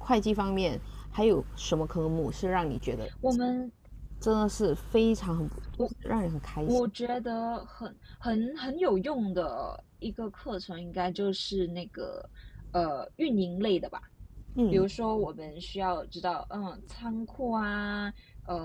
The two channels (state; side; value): identical; both; correlation 1.00